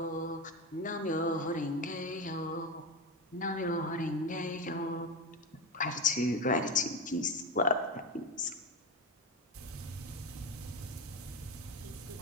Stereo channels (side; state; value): both; normal; correlation 0.17